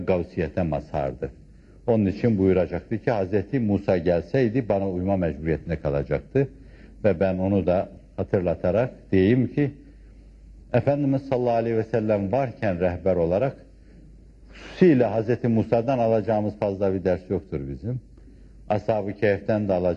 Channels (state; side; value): identical; both; correlation 1.00